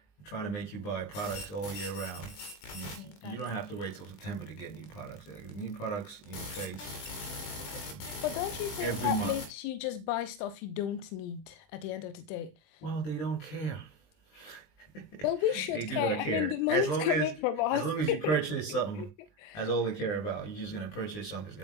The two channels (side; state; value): right; late; 20 ms